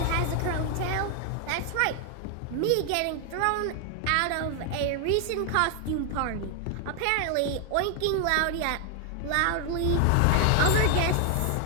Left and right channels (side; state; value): both; different; correlation 0.00